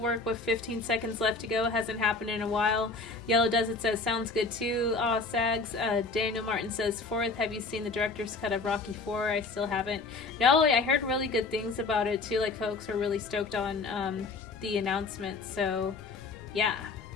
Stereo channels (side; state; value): right; quieter; 3.9 dB